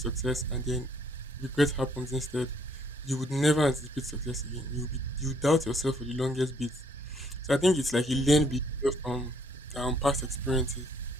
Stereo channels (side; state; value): both; normal; correlation 0.67